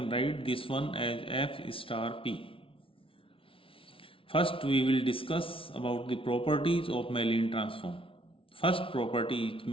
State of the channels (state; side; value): late; right; 0.26 ms